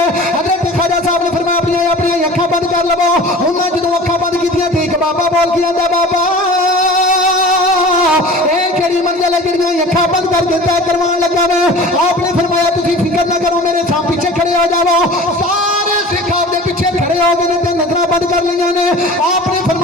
حضرت خواجہ صاحب نے فرمایا اپنی اکھاں بند کر لو انہاں جدوں اکھاں بند کیتیاں تے ایک بابا بول کے آندا بابا اے کیڑی منزل ہے جڑیاں اکھاں بند کر کے طے کروان لگا میں آپ نے فرمایا تسی فکر نہ کرو میرے سام پیچھے کھڑے ہو جاؤ سارے سکھ آپ دے پیچھے کھڑے ہو گئے تے نظراں بند کر لیاں نے آپ نے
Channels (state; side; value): normal; both; correlation 0.40